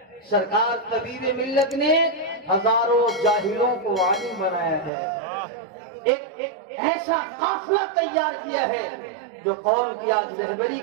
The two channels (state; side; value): drops out; left; at 4.9 s